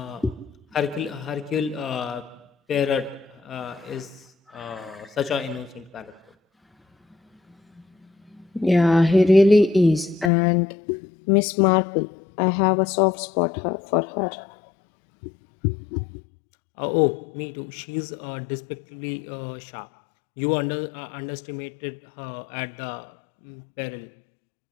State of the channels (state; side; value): drops out; right; at 10.3 s